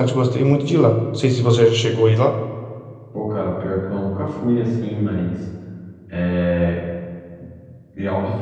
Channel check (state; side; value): identical; both; correlation 1.00